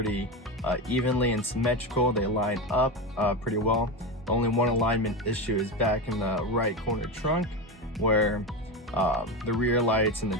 evenly and symmetrical. They line up pretty well. The only one alignment issue is back in the right corner trunk, where the rear lights in the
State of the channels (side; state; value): both; normal; correlation 0.18